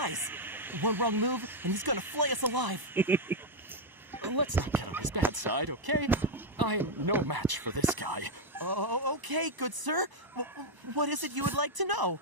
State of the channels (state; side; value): late; left; 1.0 ms